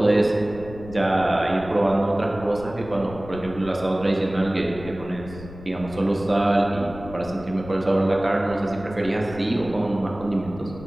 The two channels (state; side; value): noise; left; rumble, 15 dB below the sound